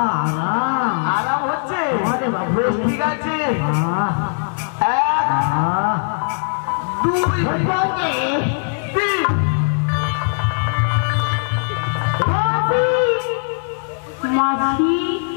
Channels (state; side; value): silent; right; digital silence